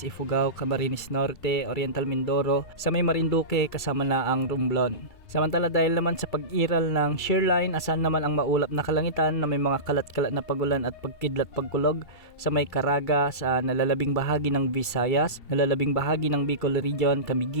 Ifugao, Camarines Norte, Oriental Mindoro, sa may Marinduque kasama na ang Romblon. Samantala dahil naman sa pag-iral ng shearline, asahan naman ang maulap na kalangitan na may mga kalat-kalat na pagulan at pagkidlat pagkulog sa may Caraga sa nalalabing bahagi ng Visayas, nalalabing bahagi ng Bicol Region,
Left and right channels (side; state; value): right; late; 2.7 ms